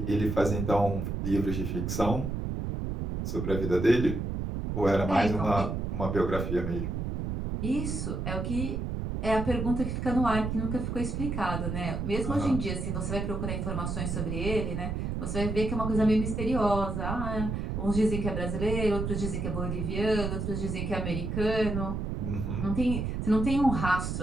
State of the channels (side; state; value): right; noise; rumble, 2 dB below the sound